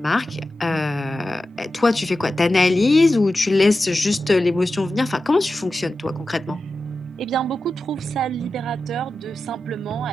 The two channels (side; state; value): both; normal; correlation 0.93